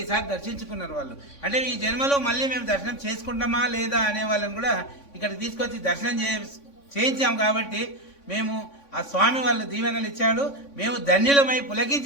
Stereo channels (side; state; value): right; late; 3.5 ms